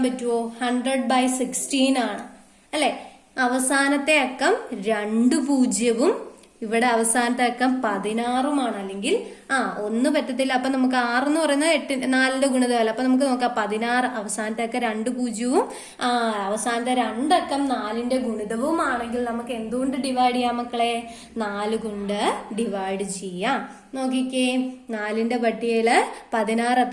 പറ്റുമോ? 100/16 ആണ് അല്ലെ. അവസാനത്തെ അക്കം 2 പൂജ്യവും ഇവിടെ അവസാനത്തെ അക്കം 16ഉമാണ്. അല്ലെങ്കിൽ 1 പറ്റത്തില്ല. അപ്പൊ നമുക്ക് 6 എന്ന് പറയുന്നത് 4ന്റെ ഗുണിതമല്ല. അപ്പൊ നമുക്ക് നോക്കാം 16. അവസാനത്തെ അക്കം 2 പൂജ്യവും അവസാനത്തെ 2 അക്കം 4ന്റെ ഗുണിതവും ആണെങ്കിൽ നമുക്ക് എന്തുകൊണ്ട് ഡിവൈഡ് ചെയ്യാം മക്കളെ? 4 കൊണ്ട് ഡിവൈഡ് ചെയ്യാം. നോക്കിക്കേ 4ന്റെ പട്ടികയില് 16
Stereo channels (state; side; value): identical; both; correlation 1.00